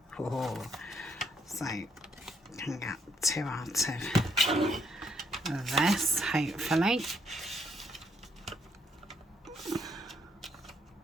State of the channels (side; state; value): both; normal; correlation 0.72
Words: Oh, so can get 2 out of this, hopefully.